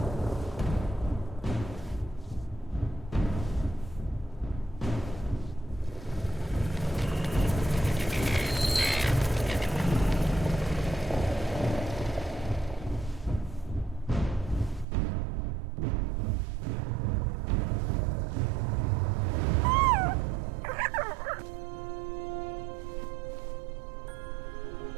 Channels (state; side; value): drops out; left; at 14.9 s